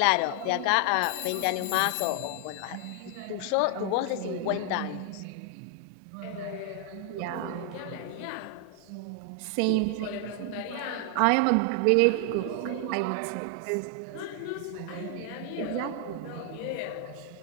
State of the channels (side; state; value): both; different; correlation 0.00